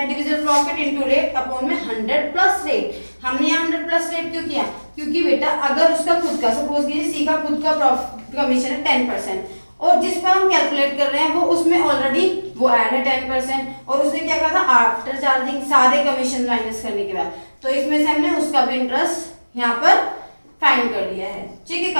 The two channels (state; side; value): inverted; both; correlation -1.00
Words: divisible profit into rate upon में 100 प्लस रेट। हमने यहाँ 100 प्लस रेट क्यों किया, क्योंकि बेटा अगर उसका खुद का, सपोज कीजिए सी का खुद का कमीशन है 10%, और जिस पर हम कैलकुलेट कर रहे हैं वो उसमें ऑलरेडी वो ऐड है 10%, और उसने क्या कहा था, आफ्टर चार्जिंग सारे कमीशन माइनस करने के बाद, तो इसमें से हमने उसका भी इंटरेस्ट यहाँ पर फाइंड कर लिया है, ठीक है।